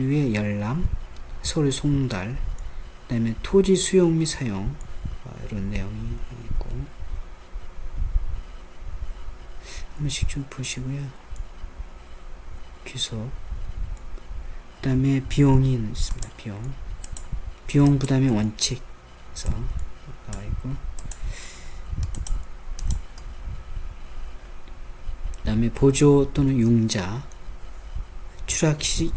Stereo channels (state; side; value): identical; both; correlation 1.00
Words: 열람, 서류 송달, 그 다음에 토지 수용 및 사용, 이런 내용이 있고, 한 번씩 좀 보시고요. 귀속, 그 다음에 비용이 있습니다. 비용 부담의 원칙에서 나와 있고, 그 다음에 보조 또는 융자, 추락